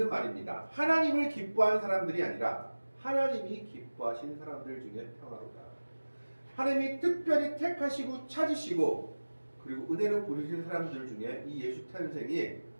말입니다. 하나님을 기뻐하는 사람들이 아니라 하나님이 기뻐하시는 사람들 중에 평화로다. 하나님이 특별히 택하시고 찾으시고 그리고 은혜로 부르시는 사람들 중에 이 예수 탄생이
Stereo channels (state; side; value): inverted; both; correlation -1.00